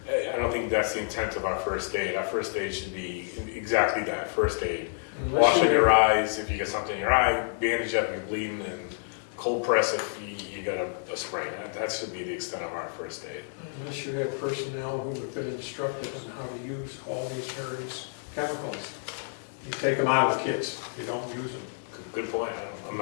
I don't think that's the intent of our first aid. Our first aid should be exactly that, first aid. Washing your eyes if you get something in your eye, bandage up if you're bleeding, and cold press if you got a sprain. That should be the extent of our first aid. Unless you have personnel who have been instructed on how to use all these various chemicals. You take them out of kits, you don't use them. Good point. I'm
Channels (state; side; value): silent; right; digital silence